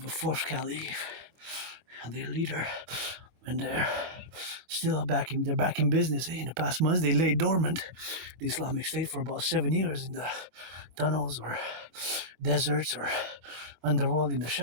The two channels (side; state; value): left; late; 24 ms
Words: a fourth Caliph, and their leader, and they're still back in business. In the past months, they lay dormant, the Islamic State, for about 7 years in the tunnels or deserts or underworld in the